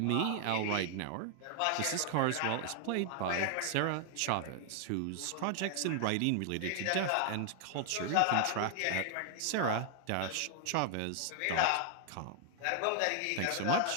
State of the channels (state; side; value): different; both; correlation 0.00